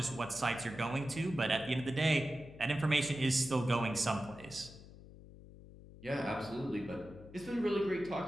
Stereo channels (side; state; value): left; noise; hum, 18 dB below the sound